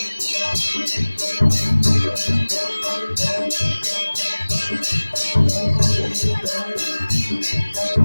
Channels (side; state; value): both; inverted; correlation -1.00